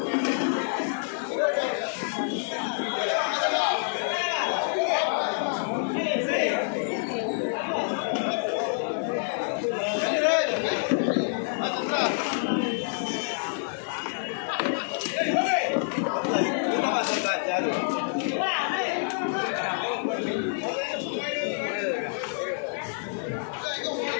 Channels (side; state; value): right; silent; digital silence